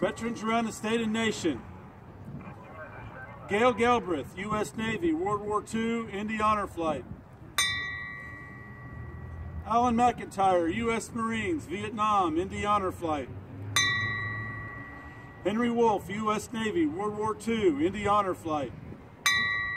around the state and nation: Gail Galbraith, U.S. Navy, World War II, Indy Honor Flight. Alan McIntyre, U.S. Marines, Vietnam, Indy Honor Flight. Henry Wolf, U.S. Navy, World War II, Indy Honor Flight.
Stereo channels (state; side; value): identical; both; correlation 1.00